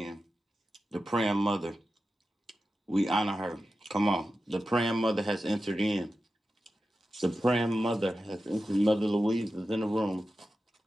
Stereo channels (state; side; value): normal; both; correlation 0.92